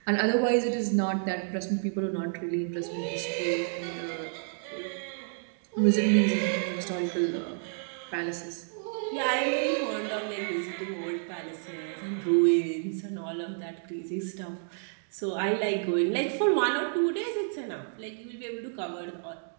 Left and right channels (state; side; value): silent; left; digital silence